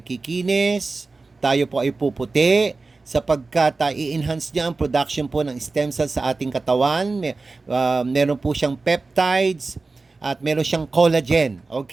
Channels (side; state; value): left; quieter; 3.7 dB